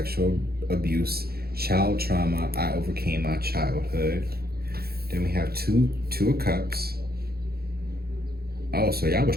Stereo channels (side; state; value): left; late; 0.45 ms